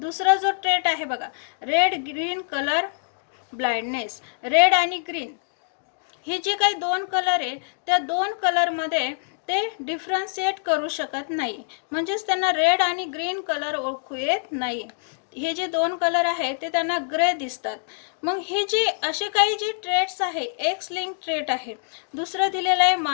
जो ट्रेट आहे बघा, red green colour blindness. Red आणि ग्रीन हे जे काही दोन कलर आहे त्या दोन कलरमध्ये ते डिफरन्शिएट करू शकत नाही, म्हणजेच त्यांना रेड आणि ग्रीन कलर ओळखू येत नाही. हे जे दोन कलर आहेत ते त्यांना ग्रे दिसतात. मग हे जे असे काही जे ट्रेट्स आहे एक्स लिंक ट्रेट आहे. दुसरं दिलेलं आहे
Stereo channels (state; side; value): silent; right; digital silence